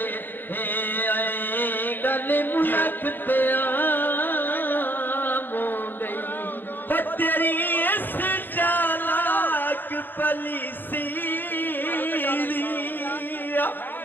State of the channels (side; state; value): right; late; 0.092 ms